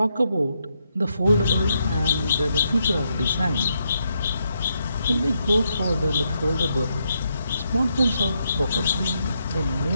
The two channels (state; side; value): inverted; both; correlation -0.80